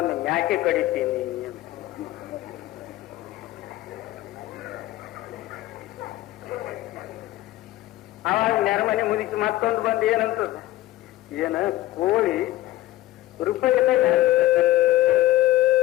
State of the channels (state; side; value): quieter; right; 15.9 dB